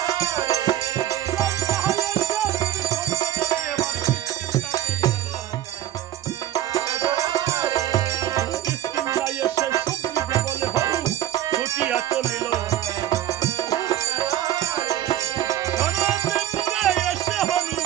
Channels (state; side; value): quieter; left; 12.5 dB